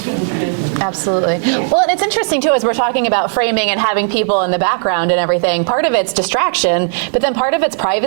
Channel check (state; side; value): silent; left; digital silence